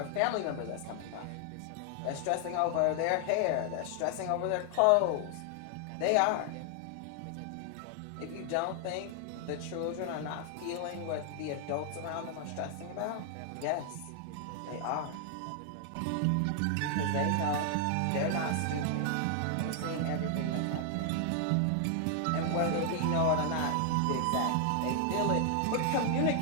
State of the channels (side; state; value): both; different; correlation 0.00